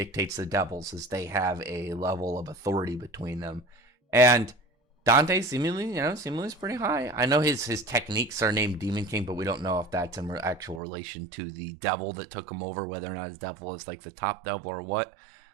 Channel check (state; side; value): drops out; left; at 10.8 s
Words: the devils, as they have a level of authority between them. And Dante seemingly is pretty high. I know his techniques are named Demon King, but we don't know if that's in actual relation to the devil that took him over, whether or not his devil is like the top devil or what.